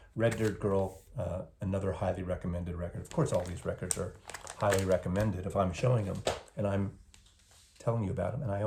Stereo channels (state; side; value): identical; both; correlation 1.00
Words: Red Dirt Girl, another highly recommended record. Of course, all these records are highly recommended if I'm showing them and I'm telling you about them and I